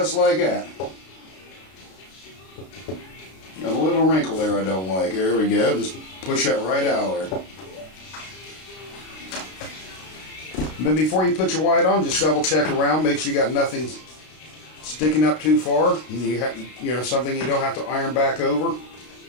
like that. Got a little wrinkle there I don't like. There we go. Just push that right out there. And then before you put your white on, just double check around. Make sure you got nothing sticking up too far. You know, something you don't have to iron back over.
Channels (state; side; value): late; right; 32 ms